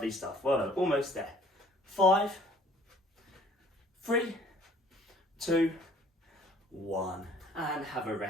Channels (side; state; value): both; normal; correlation 0.56